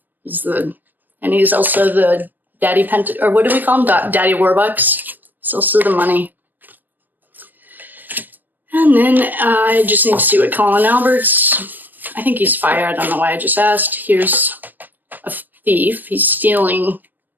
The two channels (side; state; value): left; late; 0.089 ms